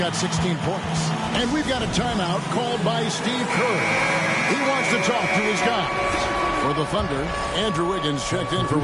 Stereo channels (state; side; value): identical; both; correlation 1.00